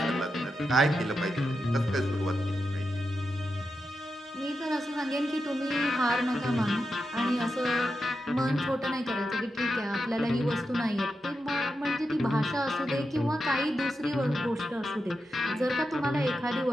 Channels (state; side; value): normal; both; correlation 0.88